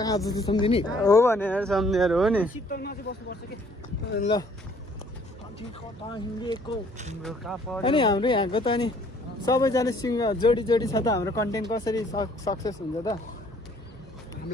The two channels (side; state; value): both; normal; correlation 0.60